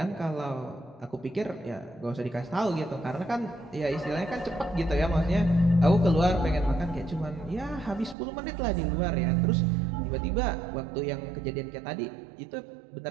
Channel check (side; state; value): left; drops out; at 8.2 s